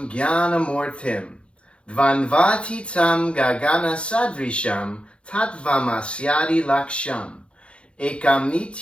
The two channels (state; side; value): late; right; 0.059 ms